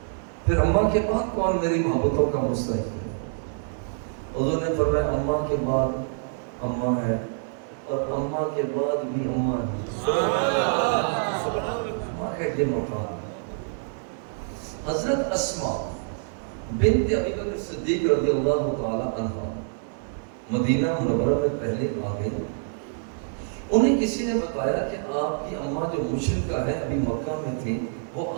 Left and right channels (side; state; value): left; silent; digital silence